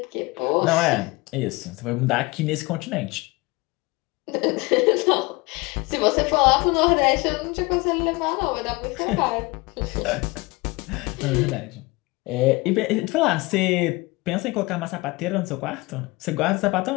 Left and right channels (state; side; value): quieter; right; 23.7 dB